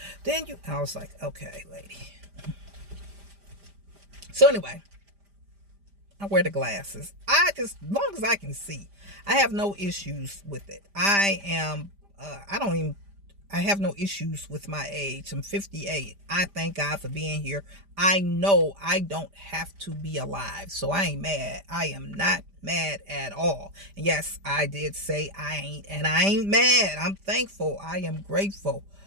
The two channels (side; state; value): left; late; 5.0 ms